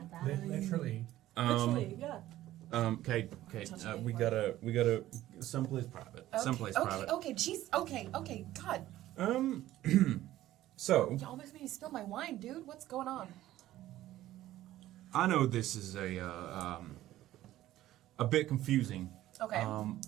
Literally. Literally, yeah. Kate, we gotta someplace private. Someplace private. Okay, jeez. Okay, God. So You almost made me spill my wine, dude. What's going on? I know this is a bit confusing. Okay.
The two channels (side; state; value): left; quieter; 14.5 dB